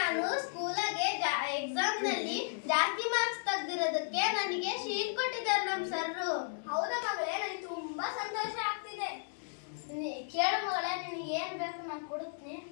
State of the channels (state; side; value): silent; right; 55 dB below the other